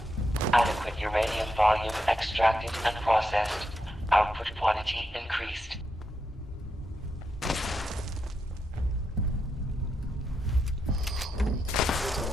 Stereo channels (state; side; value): normal; both; correlation 0.83